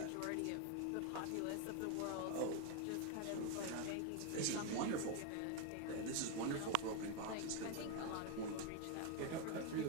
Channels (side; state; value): both; different; correlation 0.01